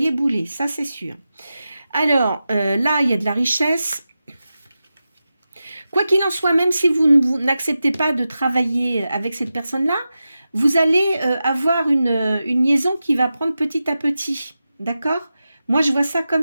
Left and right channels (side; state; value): both; inverted; correlation -0.92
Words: bouler, ça c'est sûr. Alors, là, il y a de la richesse. Quoi qu'il en soit, même si vous n'acceptez pas de travailler avec cette personne-là, vous allez avoir une liaison qui va prendre petit à petit. D'accord? Moi, je vois ça comme